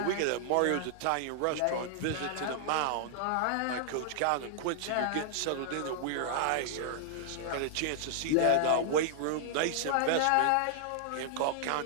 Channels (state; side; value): different; both; correlation -0.01